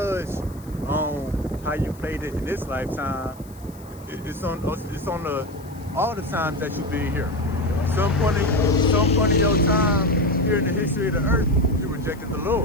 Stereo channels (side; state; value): left; noise; hiss, 25 dB below the sound